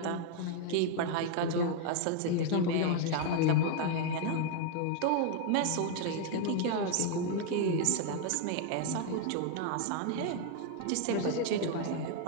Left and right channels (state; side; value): different; both; correlation 0.00